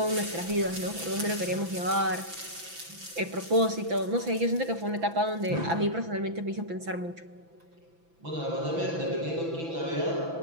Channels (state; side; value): late; left; 6.0 ms